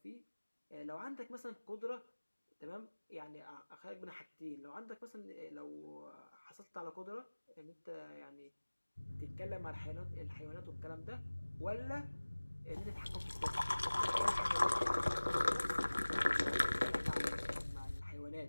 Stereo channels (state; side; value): inverted; both; correlation -1.00